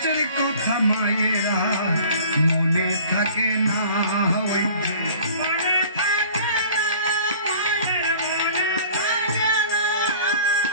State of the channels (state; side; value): inverted; both; correlation -0.48